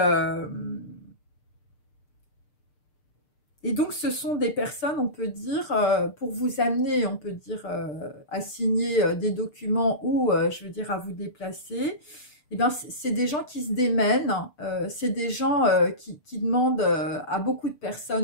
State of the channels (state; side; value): late; right; 6.7 ms